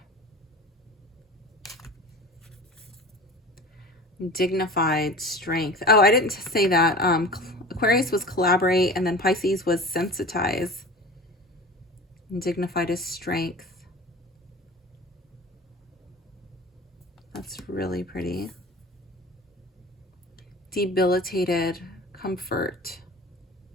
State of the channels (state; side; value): normal; both; correlation 0.37